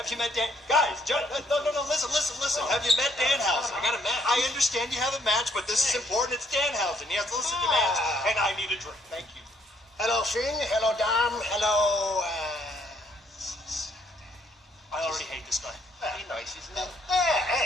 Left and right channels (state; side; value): normal; both; correlation 0.68